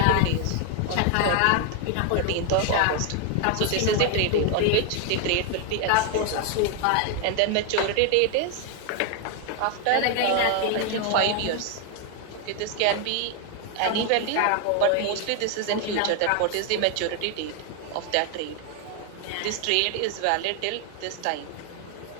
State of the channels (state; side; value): different; both; correlation 0.01